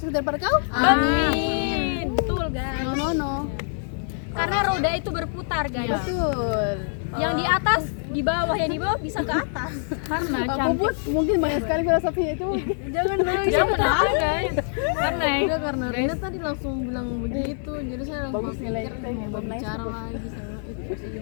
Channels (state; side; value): silent; right; digital silence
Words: daripada kau. Amin. Betul guys. No. Karena roda itu berputar guys. Betul. Yang di atas, di bawah, yang di bawah bisa ke atas. Karena Aku cantik. pun mungkin banyak sekali filosofinya itu. Jangan ada guys. Karena Udah karena Rina tadi langsung bilang begitu, jadi saya langsung Bagus nilai pikir kita yang mau bagus. bicara lagi sama